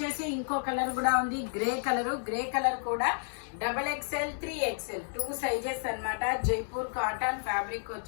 ఇంకో కలర్ కూడా ఉంది, గ్రే కలర్ కూడా XXL, 3XL 2 సైజెస్ అన్నమాట. జైపూర్ కాటన్ ఫ్యాబ్రిక్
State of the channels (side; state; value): right; silent; digital silence